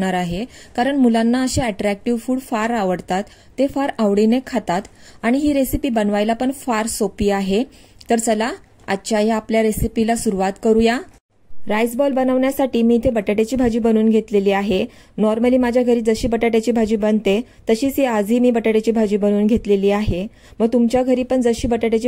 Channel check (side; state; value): both; identical; correlation 1.00